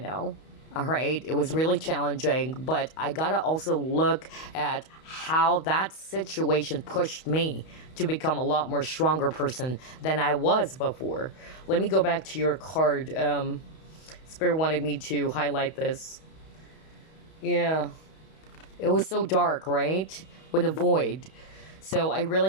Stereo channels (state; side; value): late; right; 31 ms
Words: All right, it was really challenging, but I gotta also look at how that situation pushed me to become a lot more stronger person than I was before. Let me go back to your card. Spirit wanted me to highlight this. Yeah, it was so dark, right? With a void. So I